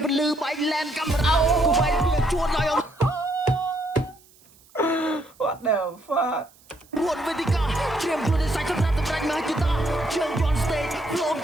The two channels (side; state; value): right; noise; hiss, 28 dB below the sound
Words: ពលឺបែកឡែនកាមេរ៉ាគួរបែកវាជួនឲ្យ What the fuck រួតវេទិកាត្រៀមខ្លួនឲ្យសាច់សម្រាប់សម្រេចមហិច្ឆតាជើងយន់ stage ផ្លោម